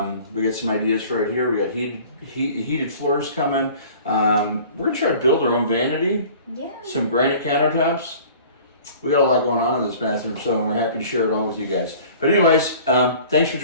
We got some ideas for it here. We got heated floors coming. We're going to try to build our own vanity. Yeah. Some granite countertops. we got a lot going on in this bathroom, so we're happy to share it all with you guys. But anyways, thanks for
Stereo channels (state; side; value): inverted; both; correlation -0.46